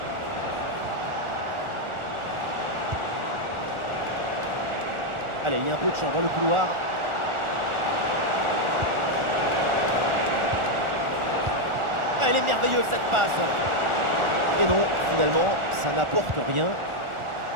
Allez, il y a un peu de champ dans le couloir. Elle est merveilleuse cette passe. Et non, finalement, ça n'apporte rien.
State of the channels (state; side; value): late; left; 1.4 ms